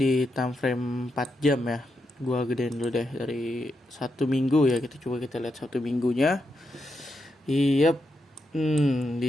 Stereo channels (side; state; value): both; normal; correlation 0.84